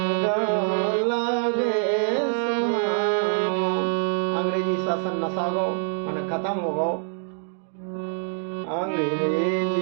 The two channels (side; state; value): left; silent; 62 dB below the other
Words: लागे सुहानो। अंग्रेजी शासन नसागो मन खत्म हो गो।